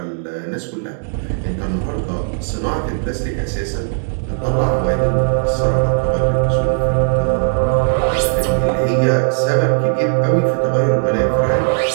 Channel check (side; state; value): left; silent; digital silence